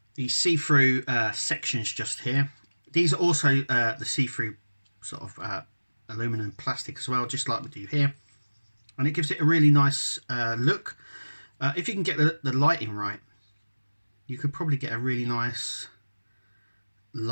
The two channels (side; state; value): both; inverted; correlation -1.00